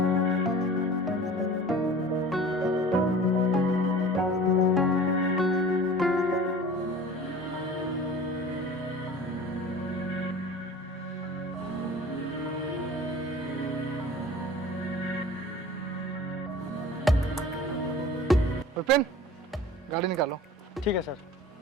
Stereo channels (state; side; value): normal; both; correlation 0.42